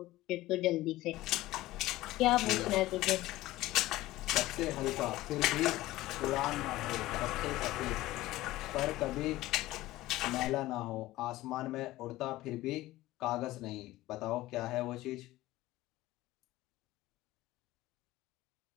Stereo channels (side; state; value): right; quieter; 17.1 dB